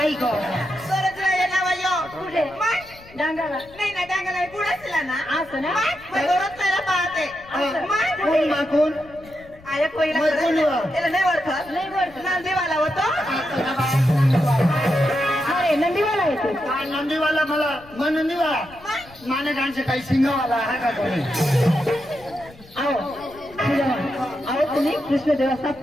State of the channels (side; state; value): left; noise; rumble, 23 dB below the sound